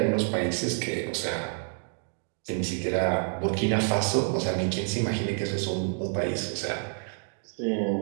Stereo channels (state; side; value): silent; left; 59 dB below the other